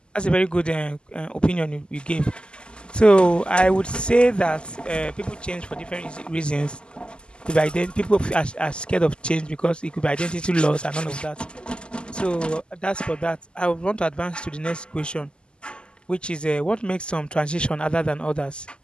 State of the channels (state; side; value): late; right; 0.049 ms